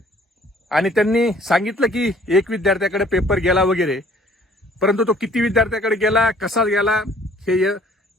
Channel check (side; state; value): both; normal; correlation 0.56